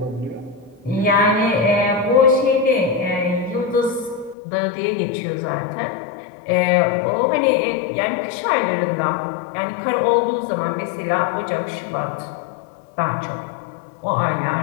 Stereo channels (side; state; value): right; drops out; at 4.4 s